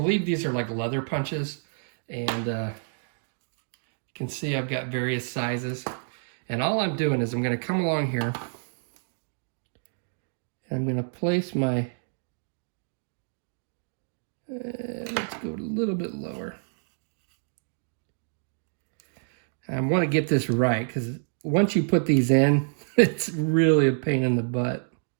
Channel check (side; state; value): left; silent; digital silence